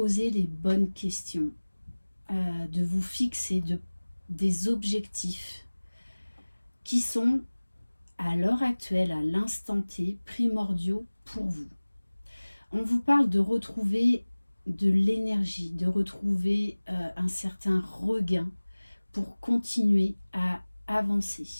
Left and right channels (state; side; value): inverted; both; correlation -1.00